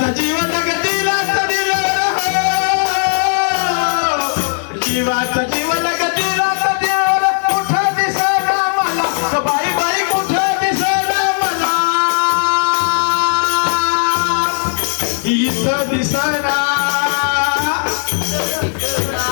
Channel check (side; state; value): right; silent; 60 dB below the other